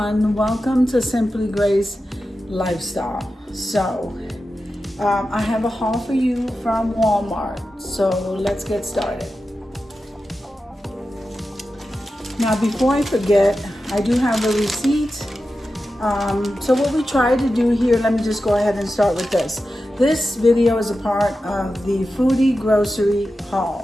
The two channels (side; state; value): both; normal; correlation 0.92